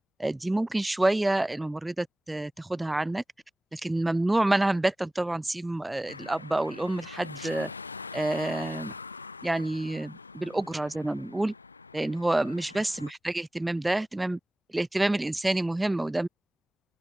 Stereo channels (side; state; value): both; normal; correlation 0.97